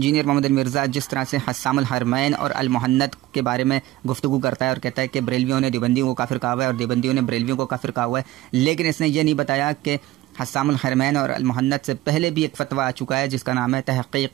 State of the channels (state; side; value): quieter; left; 16.2 dB